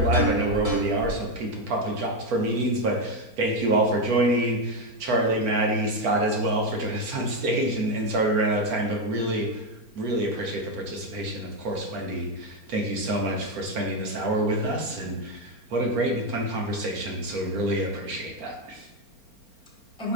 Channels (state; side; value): late; left; 4.3 ms